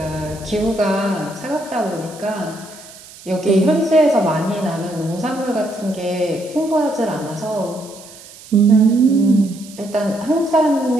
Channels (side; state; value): right; noise; hiss, 19 dB below the sound